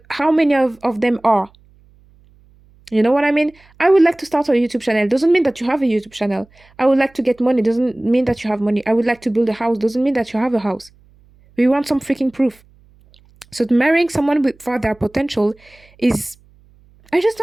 how many of them are? You know what I mean? I would like to start a YouTube channel. Doesn't mean that you have a YouTube channel. I would like to get money. Doesn't mean that you have money. I would like to build a house. Doesn't mean that you have a house. We want some freaking proof. So marrying someone for their potential is, I just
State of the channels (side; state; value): right; noise; hum, 30 dB below the sound